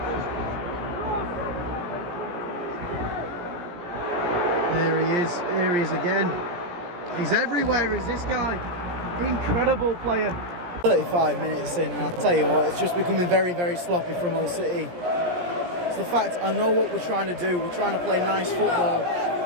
There he is. Here he is again. He's everywhere, is this guy. Incredible player. 35 minutes in, and I'll tell you what, it's just becoming very, very sloppy from Hull City. It's the fact I know what we're trying to do. We're trying to play nice football,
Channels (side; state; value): left; late; 17 ms